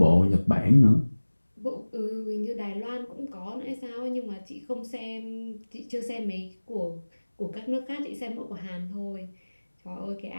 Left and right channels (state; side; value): inverted; both; correlation -1.00